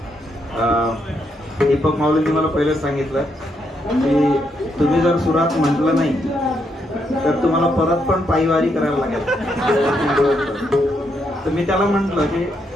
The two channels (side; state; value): both; normal; correlation 0.78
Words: दीपक माऊलींनी मला पहिलेच सांगितलं की तुम्ही जर सुरात म्हटलं नाही तर तुम्हाला परत पण पायवारी करायला लागेल. तर मी त्याला म्हटलं की